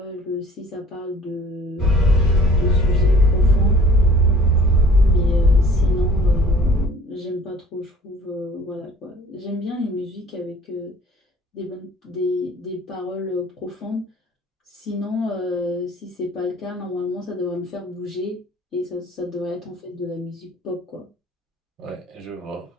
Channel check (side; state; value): both; normal; correlation 0.51